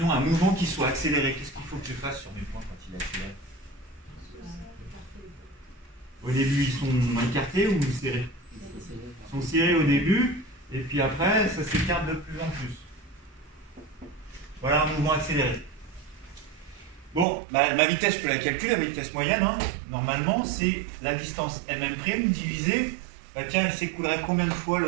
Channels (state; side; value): drops out; left; at 17.2 s